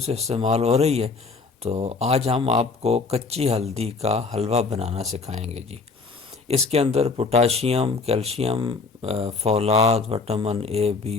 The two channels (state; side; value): quieter; right; 4.3 dB